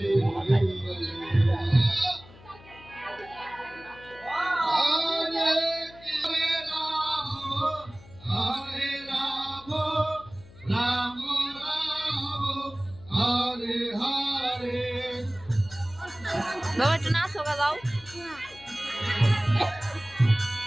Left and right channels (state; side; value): noise; left; hum, 22 dB below the sound